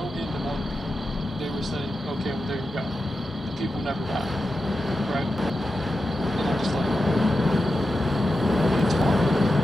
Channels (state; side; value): normal; both; correlation 0.90